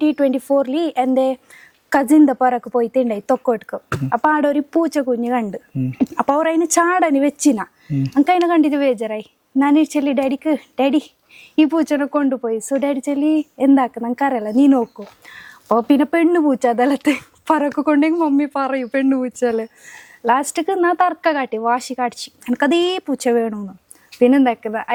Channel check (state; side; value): identical; both; correlation 1.00